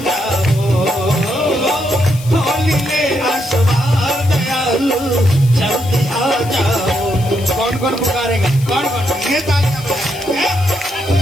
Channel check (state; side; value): noise; left; hiss, 17 dB below the sound